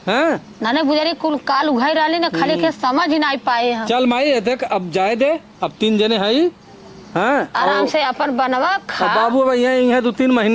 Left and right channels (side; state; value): both; identical; correlation 1.00